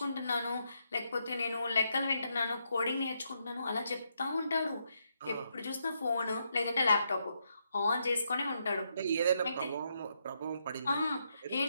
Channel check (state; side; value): inverted; both; correlation -0.79